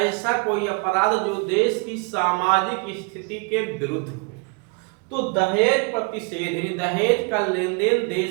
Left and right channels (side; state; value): left; quieter; 33.7 dB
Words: कोई अपराध जो देश की सामाजिक स्थिति के विरुद्ध हो। तो दहेज प्रतिषेध, दहेज का लेन देन